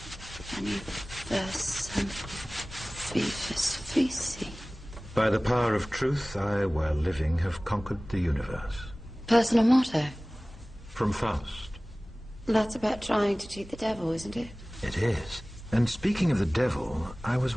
universum vivus vici. By the power of truth, I, while living, have conquered the universe. Personal motto? From Faust. That's about trying to cheat the devil, isn't it? It is. And speaking of the devil, I was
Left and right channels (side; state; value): both; normal; correlation 0.98